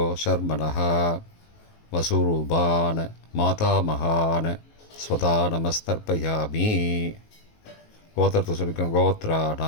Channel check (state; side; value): late; right; 19 ms